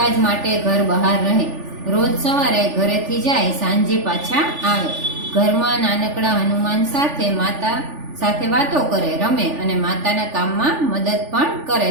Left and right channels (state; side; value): late; left; 3.4 ms